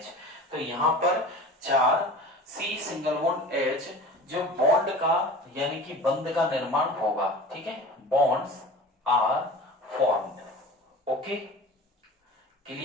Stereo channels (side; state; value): both; normal; correlation 0.38